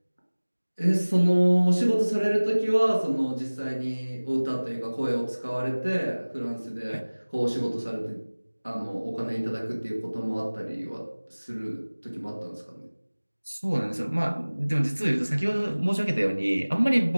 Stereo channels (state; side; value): inverted; both; correlation -1.00